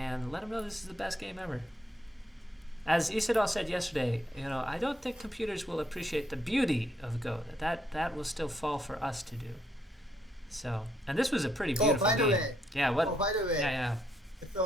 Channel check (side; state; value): both; normal; correlation 0.74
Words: let them know this is the best game ever. As Isidol said yesterday, I don't think computers will appreciate the beauty of Go. That will still fall for us to do. So, and this was a pretty beautiful game. By the way. Yeah, what? Oh, by the way. Yeah.